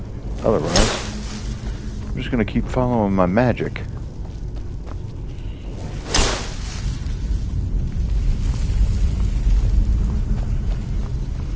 Otherwise, I'm just going to keep following my magic.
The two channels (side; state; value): both; identical; correlation 1.00